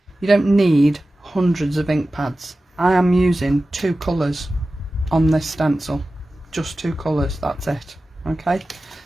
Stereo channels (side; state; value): both; normal; correlation 0.95